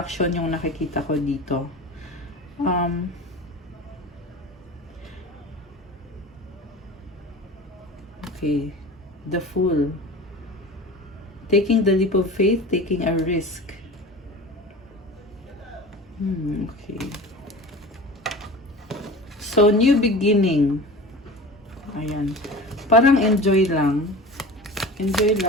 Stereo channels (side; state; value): both; normal; correlation 0.36